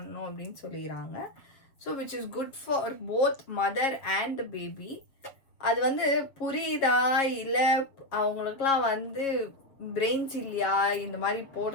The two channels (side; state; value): right; late; 6.9 ms